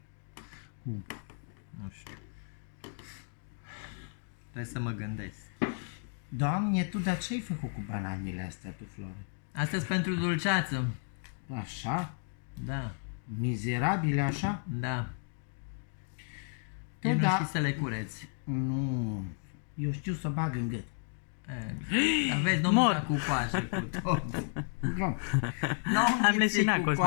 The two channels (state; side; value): silent; right; 56 dB below the other